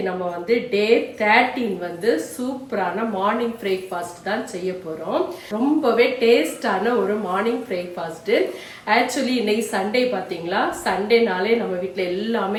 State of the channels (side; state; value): both; identical; correlation 1.00